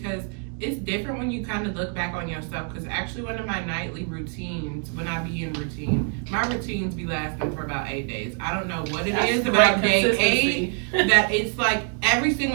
it's different when you kind of look back on yourself. Because actually, one of my nightly routines, when I be in routine, my routines be lasting for about 8 days. I don't know what it is about day 8 that it's like every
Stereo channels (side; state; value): left; quieter; 38.9 dB